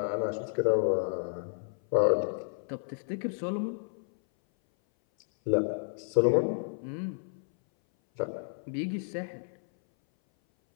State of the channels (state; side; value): silent; right; 57 dB below the other